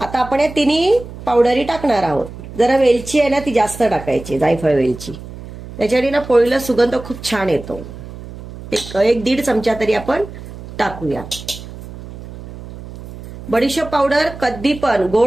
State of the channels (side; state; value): right; noise; hum, 14 dB below the sound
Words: आपण या 3 पावडरी टाकणार आहोत. जरा वेलची आहे ना ती जास्त टाकायची, जायफळ वेलची, त्याच्याने ना पोळीला सुगंध खूप छान येतो. एक 1.5 चमचा तरी आपण टाकूया. बडीशोप पावडर, कधी पण